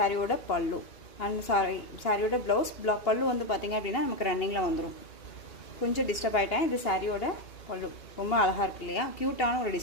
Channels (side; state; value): right; late; 2.8 ms